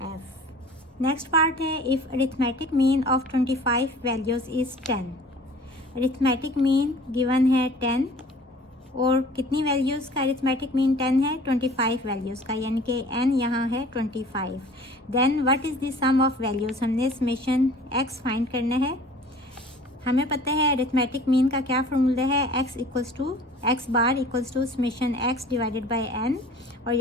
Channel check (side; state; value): both; normal; correlation 0.47